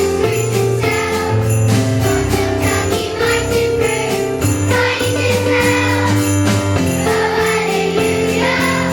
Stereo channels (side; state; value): both; identical; correlation 1.00